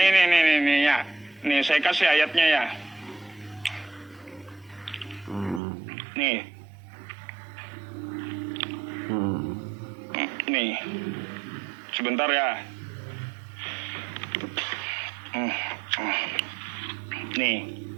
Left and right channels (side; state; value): left; drops out; at 5.6 s